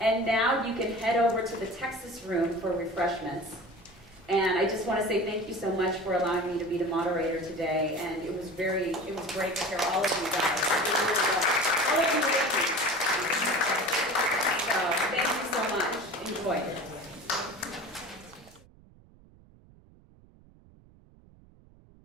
now you can head over to the Texas room for refreshments. And I just want to say thank you so much for allowing me to be the moderator today. And it was great to hear all of you guys. It really was.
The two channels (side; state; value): right; noise; rumble, 26 dB below the sound